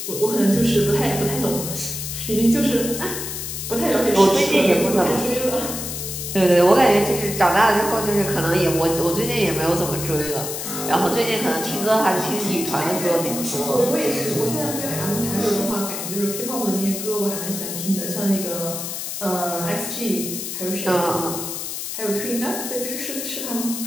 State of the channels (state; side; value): noise; left; hiss, 6 dB below the sound